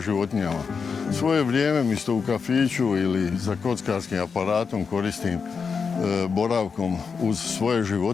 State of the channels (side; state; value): right; quieter; 5.6 dB